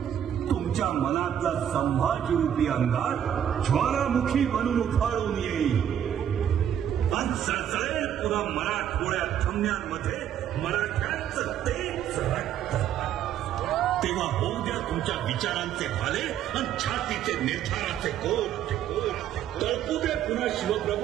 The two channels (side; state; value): left; quieter; 9.9 dB